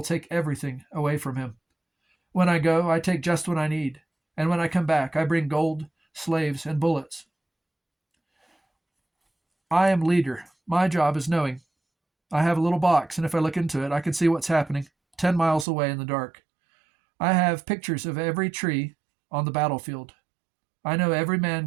take everything away from him. When I go, I take just what I need, and when I come back, I bring gold, slaves, and bullets. I am leader. My job is knowing. I have a little box, and if I look into it, I can see what's happening 10 miles away in the dark. I have pictures of every tree on the battlefield. I know every man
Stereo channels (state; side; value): drops out; left; at 15.7 s